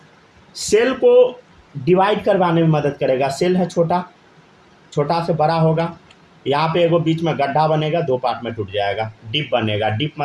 सेल को डिवाइड करवाने में मदद करेगा, सेल है छोटा, छोटा से बड़ा होगा, यहाँ पे एगो बीच में गड्ढा बनेगा, 2 पार्ट में टूट जाएगा, डिप बनेगा, डिप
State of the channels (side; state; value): both; identical; correlation 1.00